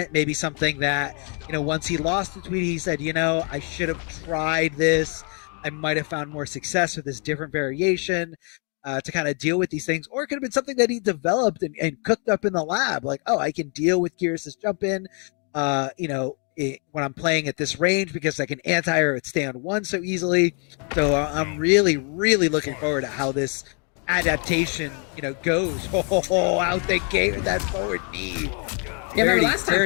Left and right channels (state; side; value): quieter; right; 38.6 dB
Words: Maybe something that once he lost to Tweedy, he said, I should have tried this. I might have found more success with this different variation. To kind of deal with these things, or it could have been something that he developed and cooked up in the lab. Like, I can deal with Geras' jump in, when I'm playing at this range because I can anti-air it stay on 1 so easily. So I'm really, really looking forward to how this adaptation, goes. Out the gate with that forward knee. Yeah, remember last time